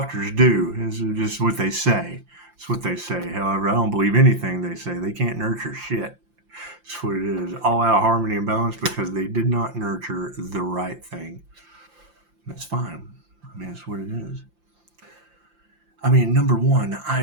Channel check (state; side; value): late; left; 5.8 ms